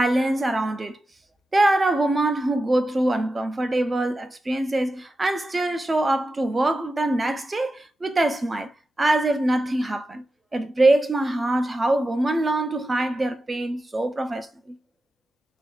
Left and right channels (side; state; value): both; normal; correlation 0.91